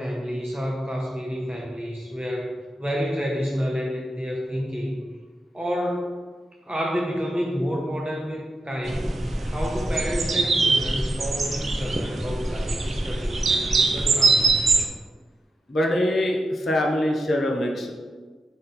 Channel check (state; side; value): normal; both; correlation 0.86